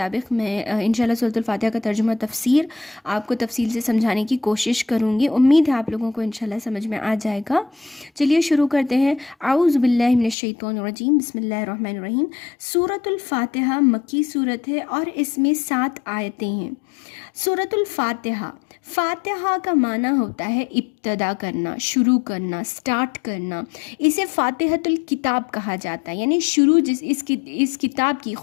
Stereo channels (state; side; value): drops out; right; at 10.4 s